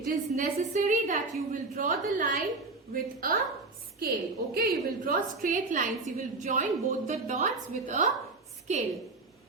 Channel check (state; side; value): quieter; left; 3.6 dB